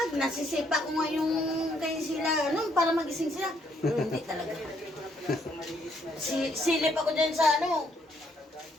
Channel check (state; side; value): normal; both; correlation 0.71